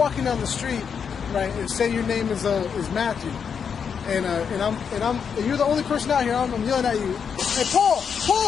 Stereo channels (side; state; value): right; quieter; 6.8 dB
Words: down the street, right, and say your name is Matthew, and you're the only person out here, I'm yelling at you, hey Paul,